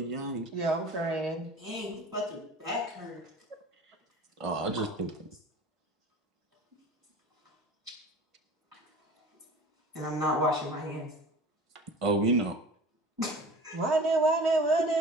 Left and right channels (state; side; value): normal; both; correlation 0.40